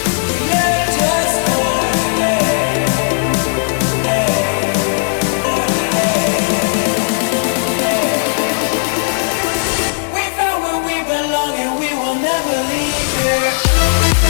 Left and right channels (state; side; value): silent; right; digital silence